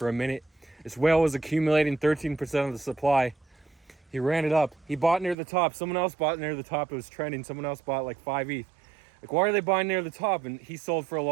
a minute. This whale was accumulating 13% of the supply. He ran it up. He bought near the top. Someone else bought near the top. It was trending. Someone else bought like 5 ETH. Like, why are they buying near the top? And he sold for a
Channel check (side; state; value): left; drops out; at 5.4 s